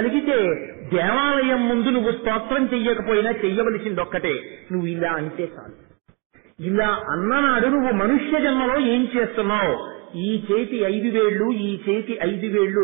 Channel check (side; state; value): left; quieter; 30.5 dB